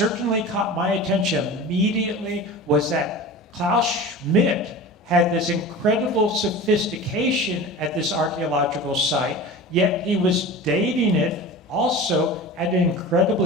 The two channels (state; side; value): normal; both; correlation 0.34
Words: caught my attention immediately was that Klaus Schmidt had this incredible sophistication at this archaeological site, yet he was dating it also at an